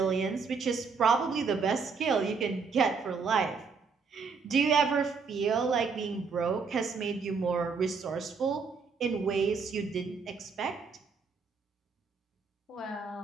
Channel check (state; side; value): quieter; left; 5.1 dB